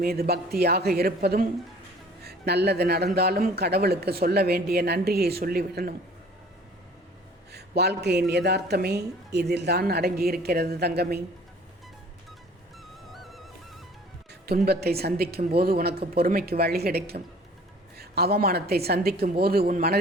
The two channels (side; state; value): both; normal; correlation 0.50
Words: மீது பக்தியாக இருப்பதும், நல்லது நடந்தாலும் கடவுளுக்கு சொல்ல வேண்டிய நன்றியை சொல்லிவிடணும். வாழ்க்கையின் யதார்த்தமே இதில் தான் அடங்கியிருக்கிறது தங்கமே. துன்பத்தை சந்திக்கும் போது உனக்கு பொறுமைக்கு வழி கிடைக்கும். அவமானத்தை சந்திக்கும் போது உன்